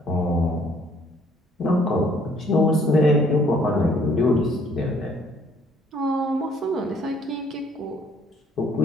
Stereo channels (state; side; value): normal; both; correlation 0.61